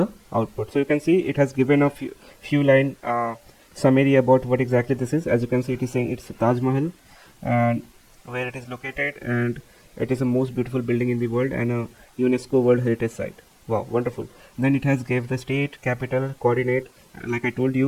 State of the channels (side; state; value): both; identical; correlation 1.00